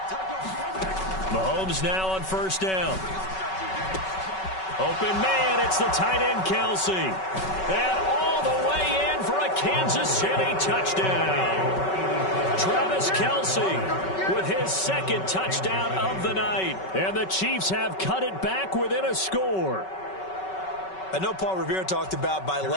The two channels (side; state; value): right; late; 5.3 ms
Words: Mahomes now on first down. Open man, it's the tight end Kelsey. And all the way in for a Kansas City touchdown. Travis Kelce with his second touchdown of the night. And the Chiefs have cut it back within a score. I know Paul Revere talked about by